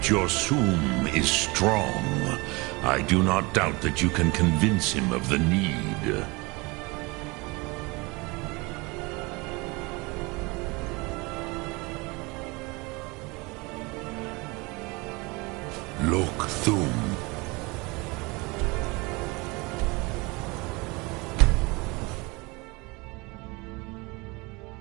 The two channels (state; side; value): quieter; left; 25.8 dB